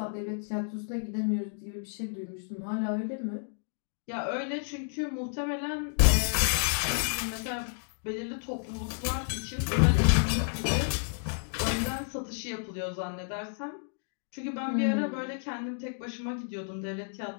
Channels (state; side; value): silent; right; digital silence